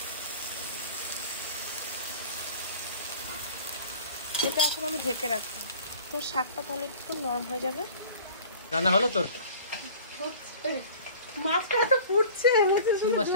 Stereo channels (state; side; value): inverted; both; correlation -0.44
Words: এটা এখন আমি ঢেকে রাখবো, তো শাকটা তাহলে একটু নরম হয়ে যাবে। রান্না হলো তোর? মাছটা তো ফুটছে, কি